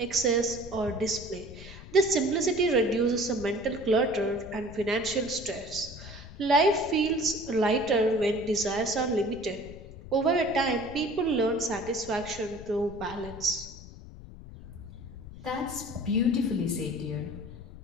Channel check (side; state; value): left; noise; rumble, 15 dB below the sound